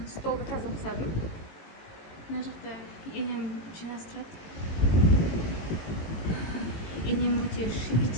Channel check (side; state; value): right; late; 18 ms